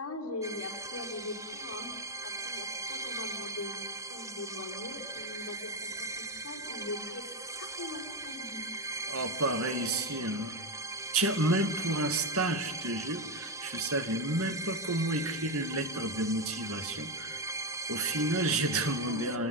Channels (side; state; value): both; normal; correlation 0.10